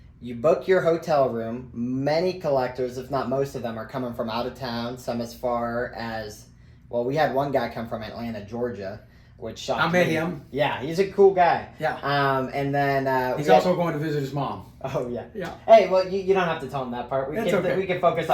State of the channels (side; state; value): both; identical; correlation 1.00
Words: you book your hotel room. Many collectors, if not most of them, are coming from out of town. Some as far as, well, we had one guy come from Atlanta, Georgia, which shocked me. I met him. Yeah, he's a cool guy. Yeah. And then he's also going to visit his mom. Oh yeah. Yeah. Hey, well, you don't have to tell him that part. We can focus